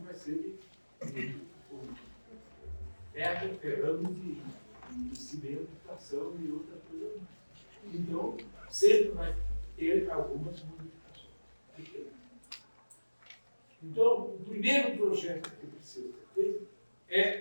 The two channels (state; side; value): inverted; both; correlation -1.00